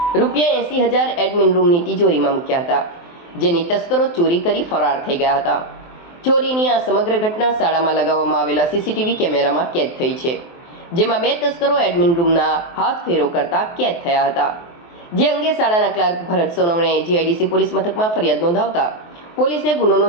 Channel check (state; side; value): late; right; 23 ms